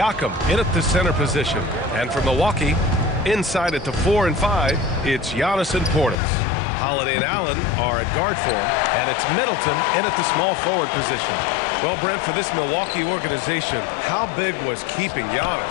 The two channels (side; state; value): right; drops out; at 6.2 s